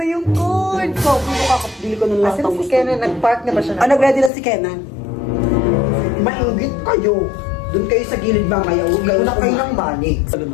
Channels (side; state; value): right; drops out; at 4.3 s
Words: yung code. So, kung kakapili ko ng lahat ng gusto. Nag-park na ba siya? Nag-ready na si Kenan. Maingit kayo. Doon kayo sa gilid mamaya. Huwag na kayo ng balik.